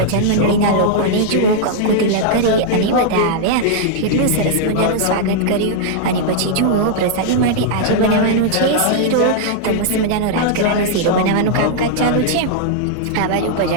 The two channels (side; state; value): both; different; correlation -0.01